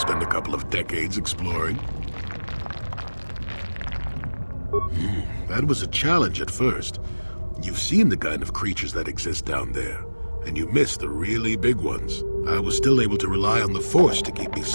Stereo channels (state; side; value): inverted; both; correlation -1.00